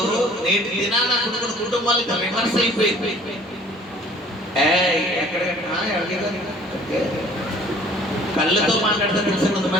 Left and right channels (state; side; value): normal; both; correlation 0.52